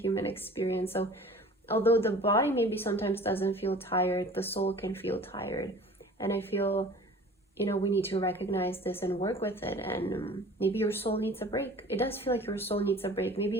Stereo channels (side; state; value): both; normal; correlation 0.44